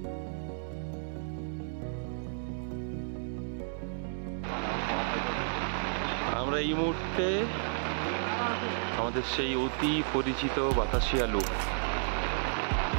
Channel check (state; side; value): silent; left; digital silence